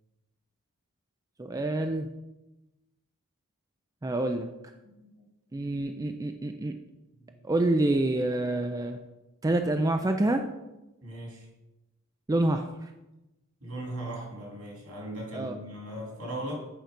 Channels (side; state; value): both; normal; correlation 0.78